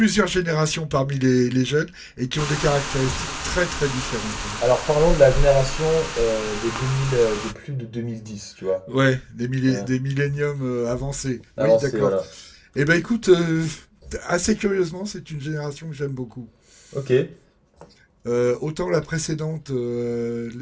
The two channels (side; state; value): both; identical; correlation 1.00